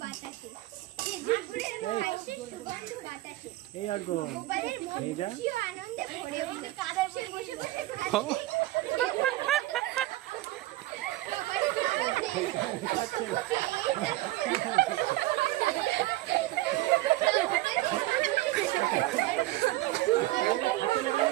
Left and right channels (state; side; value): quieter; left; 17.4 dB